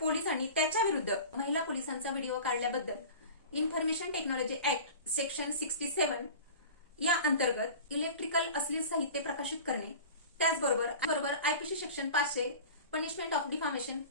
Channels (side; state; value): both; inverted; correlation -0.37